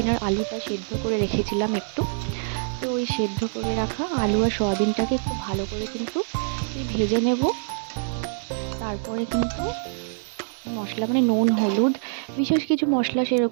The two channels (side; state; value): left; silent; 62 dB below the other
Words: আর আলুটা সেদ্ধ করে রেখেছিলাম একটু। তো ওই সেদ্ধ করে রাখা আলু আর সয়াবিনটাকে একটু ভালো করে কিন্তু ভেজে নেব। তারপরে কিন্তু মশলা মানে নুন হলুদ, বিশেষ কিছু মশলা